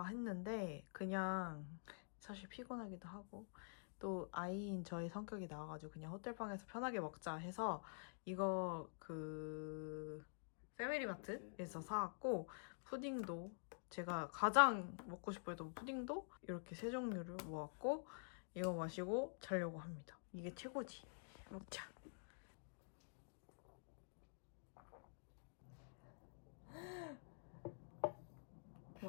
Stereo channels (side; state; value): right; silent; digital silence